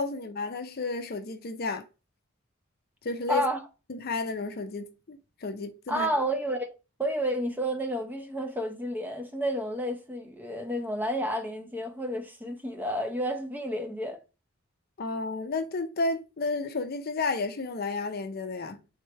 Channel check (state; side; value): normal; both; correlation 0.18